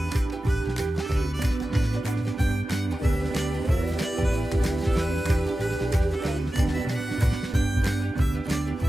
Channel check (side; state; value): both; normal; correlation 0.93